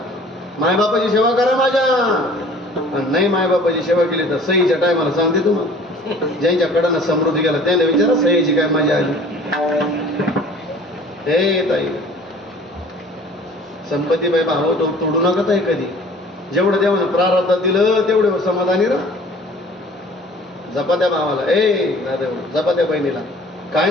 मायबापाची सेवा करा माझ्या. आणि नाही मायबापाची सेवा केली तर सहीच्या टायमाला सांगते तुम्हाला. ज्यांच्याकडनं समृद्धी गेला त्याला विचारा सहीची काय मजा आली. हे ताई संपत्तीबाई भाव तोडू नका ताई कधी. जेवढं देवानं प्रारब्धात दिलं तेवढं समाधानी राहा. जपा त्या भावाला. ए दादा जपा त्या बहिणीला. काय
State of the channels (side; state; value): both; normal; correlation 0.49